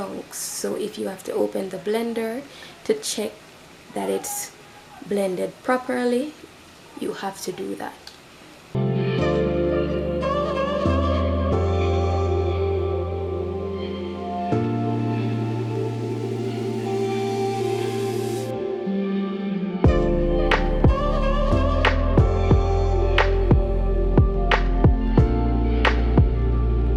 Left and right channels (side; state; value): both; identical; correlation 1.00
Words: So if you have to open the blender to check that it's blended properly, you have to do that.